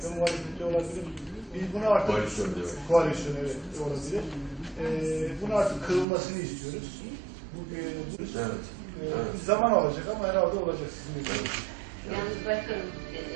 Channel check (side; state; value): left; drops out; at 6.1 s